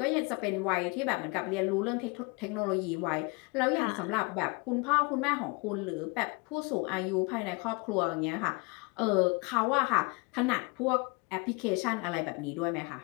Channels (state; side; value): quieter; right; 29.5 dB